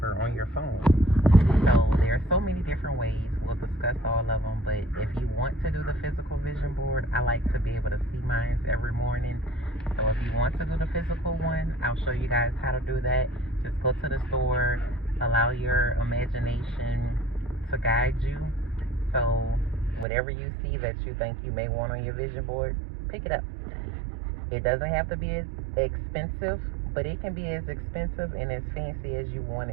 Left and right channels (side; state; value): left; drops out; at 20.1 s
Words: on your phone. So there are so many different ways. We'll discuss all of them, but if you want to do the physical vision board, I like to be able to see mine every morning. So if you want to do the physical one, I'll show you guys how to do that. Just go to the store, allow your imagination to guide you. So whatever you see that you think you may want on your vision board, pick it up. It doesn't have to be as expensive, but it can be as expensive and as fancy as you want